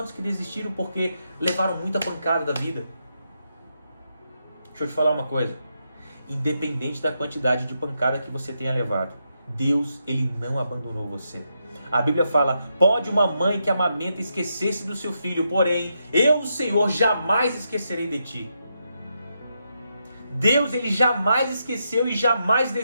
que desistiram porque levaram muita pancada da vida? Deixa eu te falar uma coisa. Independente da quantidade de pancada que você tenha levado, Deus, Ele não abandonou você. A Bíblia fala, pode uma mãe que amamenta esquecer-se do seu filho, porém, eu, o Senhor, jamais esquecerei de ti. Deus, Ele jamais esqueceu e jamais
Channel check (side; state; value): both; inverted; correlation -0.83